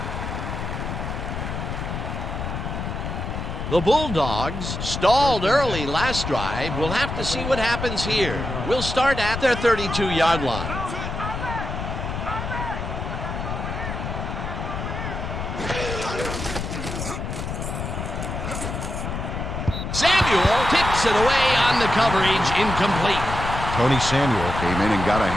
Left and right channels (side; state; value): left; noise; rumble, 5 dB below the sound